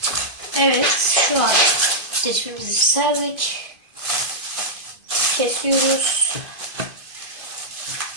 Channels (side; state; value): left; late; 2.5 ms